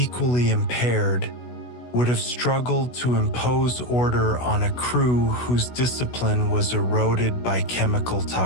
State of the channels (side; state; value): right; late; 16 ms